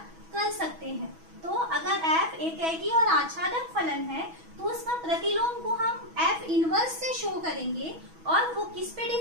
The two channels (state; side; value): late; left; 6.2 ms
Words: कर सकते हैं। तो अगर f एकेकी और आच्छादक फलन है तो उसका प्रतिलोम को हम f इनवर्स से शो करेंगे और वो किस पे